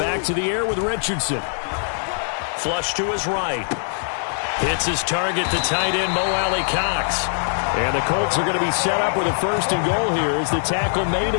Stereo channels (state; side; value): silent; right; digital silence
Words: to the air with Richardson. Flush to his right. Hits his target, the tight end, Mo Alley-Cox. And the Colts are going to be set up with a 1st and goal here as the tackle made